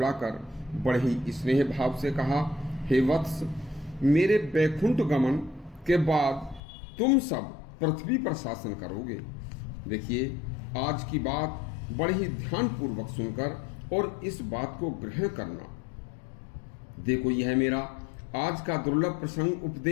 बड़े ही स्नेह भाव से कहा, हे वत्स, मेरे वैकुंठ गमन के बाद तुम सब पृथ्वी पर शासन करोगे। देखिए, आज की बात बड़े ही ध्यानपूर्वक सुनकर और इस बात को ग्रहण करना। देखो, यह मेरा आज का दुर्लभ प्रसंग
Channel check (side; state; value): right; drops out; at 6.6 s